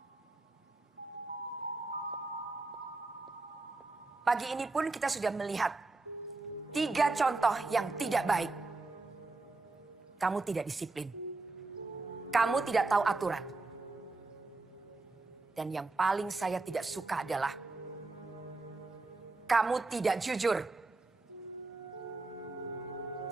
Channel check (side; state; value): left; quieter; 3.5 dB